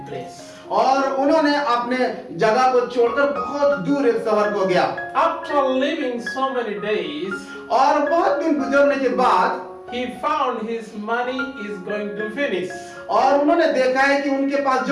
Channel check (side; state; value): both; identical; correlation 1.00